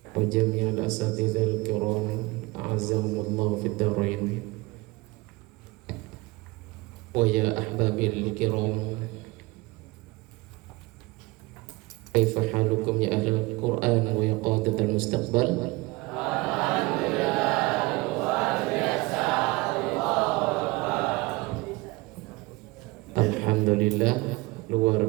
وجميع الأساتذة الكرام أعزهم الله في الدارين. ويا أحبابي الكرام، كيف حالكم يا أهل القرآن ويا قادة المستقبل؟ Alhamdulillah, luar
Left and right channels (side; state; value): left; quieter; 22.8 dB